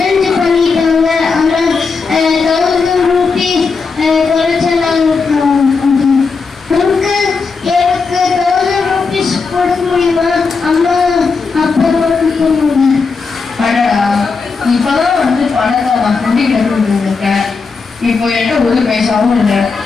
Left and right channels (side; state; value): right; quieter; 4.8 dB